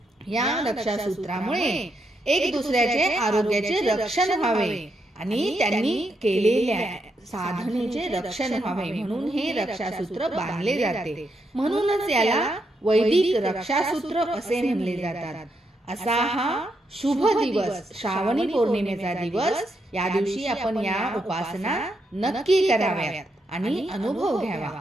या रक्षासूत्रामुळे एक दुसऱ्याचे आरोग्याचे रक्षण व्हावे आणि त्यांनी केलेल्या साधनेचे रक्षण व्हावे म्हणून हे रक्षासूत्र बांधले जाते। म्हणूनच याला वैदिक रक्षासूत्र असे म्हणले जातात। असा हा शुभ दिवस श्रावणी पौर्णिमेचा दिवस। या दिवशी आपण या उपासना नक्की कराव्यात आणि अनुभव घ्यावा।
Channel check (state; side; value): normal; both; correlation 0.80